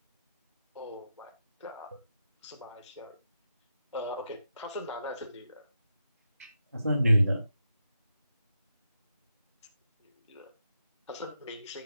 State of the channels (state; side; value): inverted; both; correlation -0.87